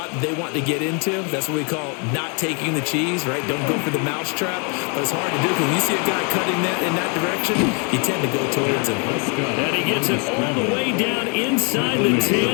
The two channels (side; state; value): right; quieter; 35.9 dB